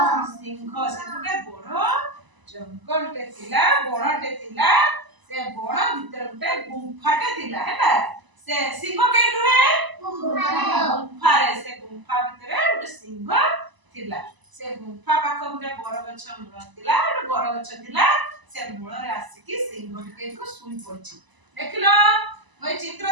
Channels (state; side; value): late; left; 1.0 ms